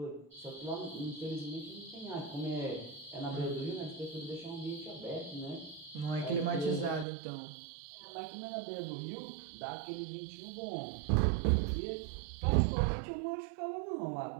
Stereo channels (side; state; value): left; drops out; at 7.1 s